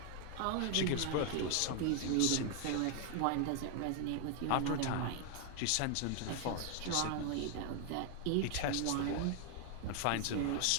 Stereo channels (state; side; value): different; both; correlation 0.00